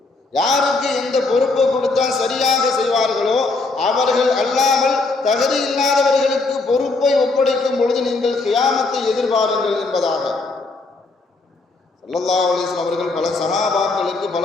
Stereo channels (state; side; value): quieter; right; 3.6 dB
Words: யாருக்கு எந்த பொறுப்பை கொடுத்தால் சரியாக செய்வார்களோ அவர்கள் அல்லாமல் தகுதி இல்லாதவர்களுக்கு பொறுப்பை ஒப்படைக்கும் பொழுது நீங்கள் கியாமத்தை எதிர்பாருங்கள் என்பதாக. ஸல்லல்லாஹு அலைஹி வஸல்லம் அவர்கள் பல சஹாபாக்களுக்கு